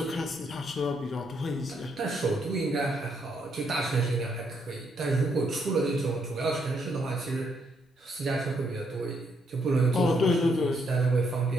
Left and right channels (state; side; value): normal; both; correlation 0.74